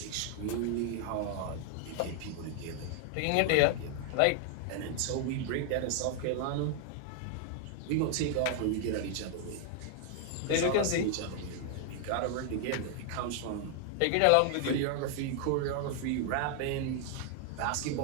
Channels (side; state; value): both; different; correlation 0.00